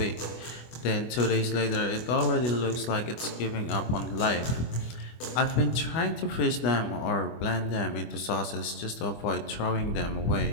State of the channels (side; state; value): right; late; 24 ms